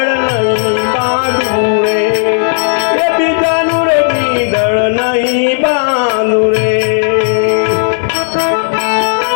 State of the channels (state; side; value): silent; right; digital silence